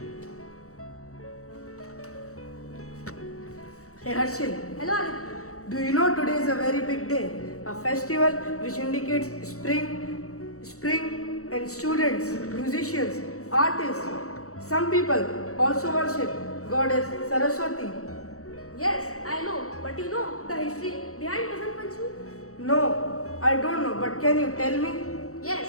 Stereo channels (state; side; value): late; right; 0.65 ms